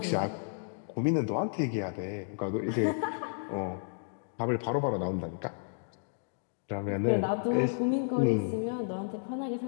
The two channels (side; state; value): right; silent; digital silence